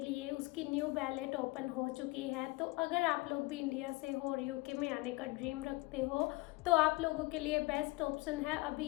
उसकी न्यू बैलेट ओपन हो चुकी है। तो अगर आप लोग भी इंडिया से हो और यूके में आने का ड्रीम रखते हो तो आप लोगों के लिए बेस्ट ऑप्शन है अभी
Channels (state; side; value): quieter; right; 22.8 dB